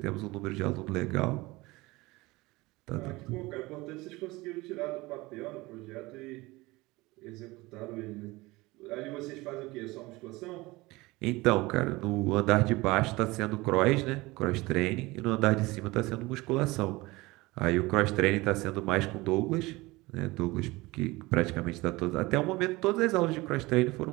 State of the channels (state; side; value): quieter; left; 21.5 dB